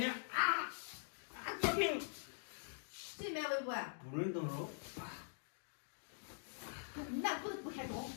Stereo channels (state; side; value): silent; right; digital silence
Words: 啊！高兴。谁买微博啊？不准动手。那不开动，